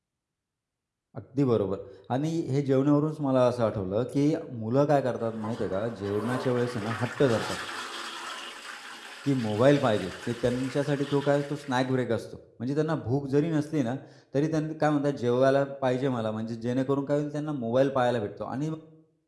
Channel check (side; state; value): both; identical; correlation 1.00